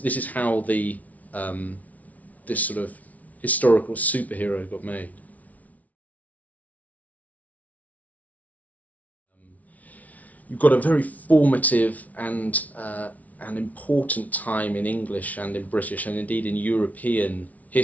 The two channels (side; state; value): right; late; 0.071 ms